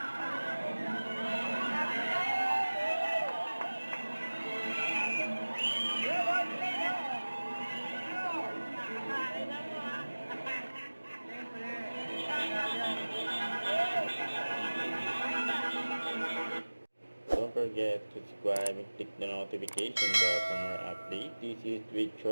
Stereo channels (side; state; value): both; inverted; correlation -1.00